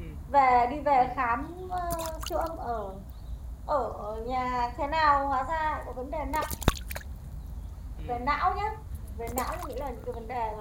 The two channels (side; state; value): both; identical; correlation 1.00